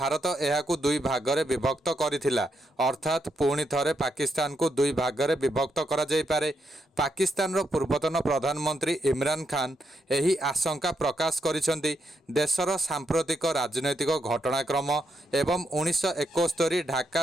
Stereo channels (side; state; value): both; normal; correlation 0.81